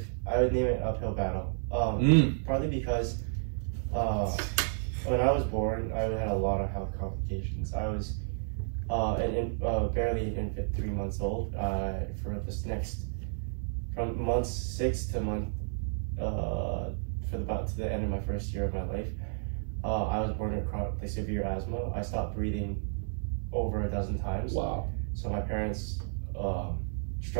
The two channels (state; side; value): silent; left; digital silence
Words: I would name it Uphill Battle. Partly because when I was born, I had a lot of health complications. I was barely an infant, 3 months old. For this next. From month 6 to to the end of my first year of my life, I was born with severe asthma. I stopped breathing over a dozen times. Wow. So my parents